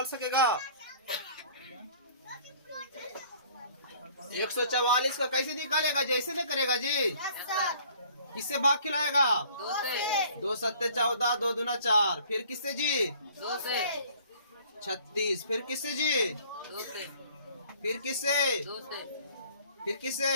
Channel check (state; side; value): inverted; both; correlation -0.54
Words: सकेगा? 144 का कैसे निकालेगा? जैसे नहीं करेगा जी? किससे भाग खिलाएगा? 2 सत्ते 14, 2 दूना 4। फिर किससे जी? 2 से 36। फिर किससे जी? 2 से फिर किससे? 2 से फिर किससे?